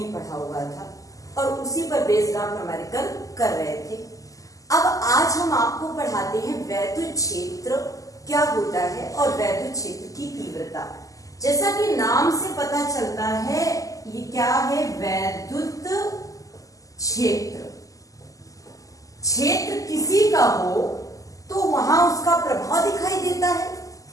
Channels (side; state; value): right; late; 0.17 ms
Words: पढ़ा हुआ था और उसी पर बेस्ड आप न्यूमेरिकल कर रहे थे। अब आज हम आपको पढ़ाते हैं वैद्युत क्षेत्र क्या होता है और वैद्युत क्षेत्र की तीव्रता। जैसा कि नाम से पता चलता है ये क्या है, वैद्युत क्षेत्र। क्षेत्र किसी का हो तो वहां उसका प्रभाव दिखाई देता है।